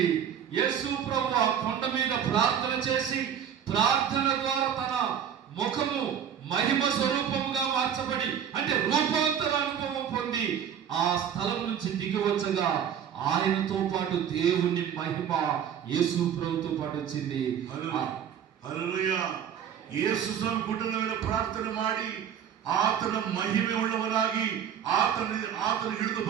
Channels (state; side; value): quieter; left; 8.8 dB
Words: యేసు ప్రభు ఆ కొండ మీద ప్రార్థన చేసి ప్రార్థన ద్వారా తన ముఖము మహిమ స్వరూపముగా మార్చబడి అంటే రూపాంతర అనుభవం పొంది ఆ స్థలం నుంచి దిగి వచ్చగా ఆయనతో పాటు దేవుని మహిమ యేసు ప్రభుతో పాటు వచ్చింది. హల్లెలూయా. యేసు స్వామి గుడ్డల మీద ప్రార్థన ಮಾಡಿ ಆತನ ಮಹಿಮೆ ಉಳ್ಳವನಾಗಿ ಆತನ ಹಿಡಿದು